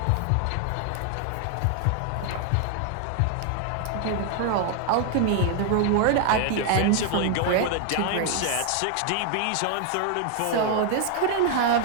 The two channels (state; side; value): different; both; correlation 0.00